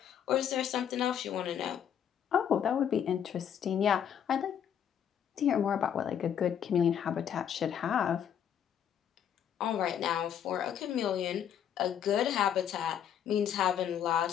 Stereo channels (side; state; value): right; quieter; 9.0 dB